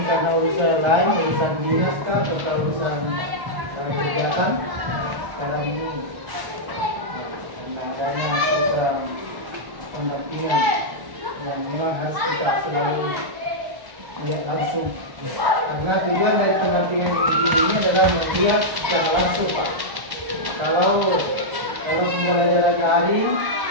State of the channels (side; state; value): left; late; 1.1 ms